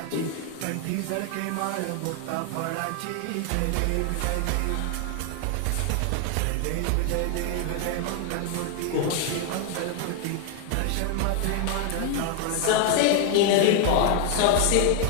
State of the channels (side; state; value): both; different; correlation 0.00